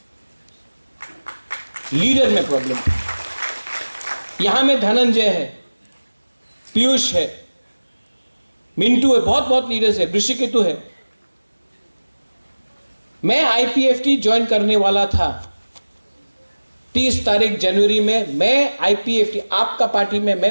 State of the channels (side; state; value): both; inverted; correlation -1.00